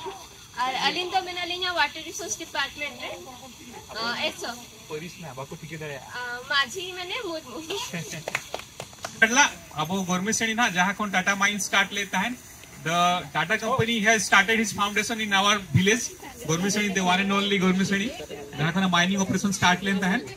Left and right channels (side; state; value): both; identical; correlation 1.00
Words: और अली तो बिना अली वाटर रिसोर्स डिपार्टमेंट रे एसो Police ना बाको टिके दे माझी माने मुर्मू पहला अब गवर्नमेंट से ना जहां कौन टाटा माइन स्टार्ट लेता है the Tata company has started his foundation in our village government seni the one and only government seni जहां kana mining operation start लेता है